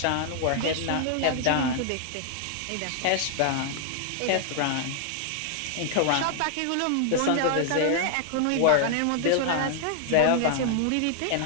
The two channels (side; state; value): both; different; correlation 0.00